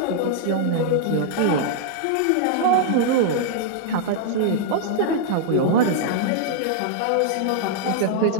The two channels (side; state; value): both; different; correlation -0.01